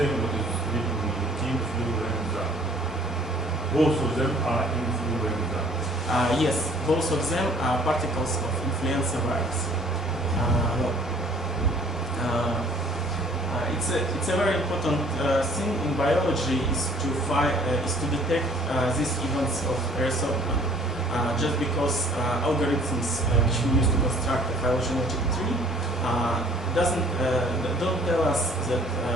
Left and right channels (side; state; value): both; normal; correlation 0.56